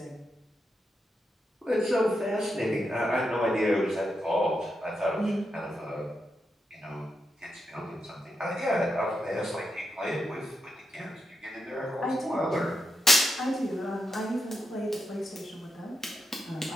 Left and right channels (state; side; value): normal; both; correlation 0.84